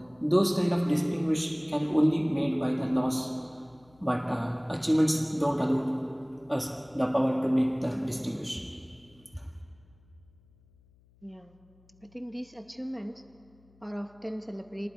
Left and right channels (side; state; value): left; noise; hum, 30 dB below the sound